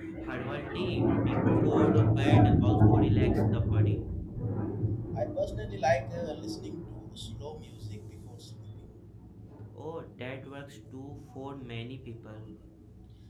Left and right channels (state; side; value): identical; both; correlation 1.00